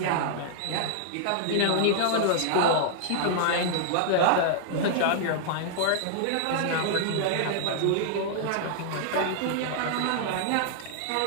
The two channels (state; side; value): different; both; correlation -0.01